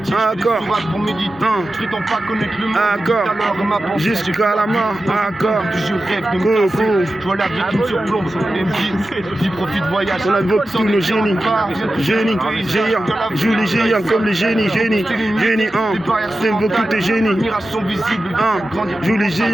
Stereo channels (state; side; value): normal; both; correlation 0.93